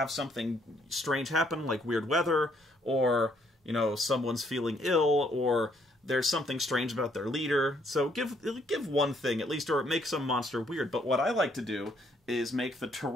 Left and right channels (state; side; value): normal; both; correlation 0.68